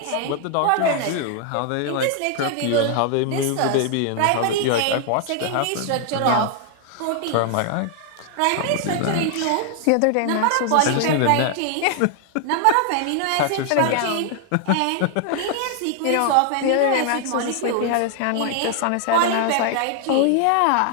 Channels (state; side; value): different; both; correlation 0.00